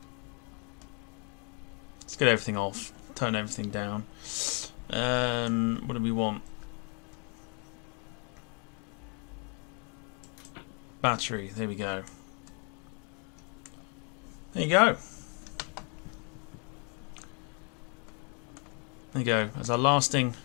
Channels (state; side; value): quieter; right; 36.9 dB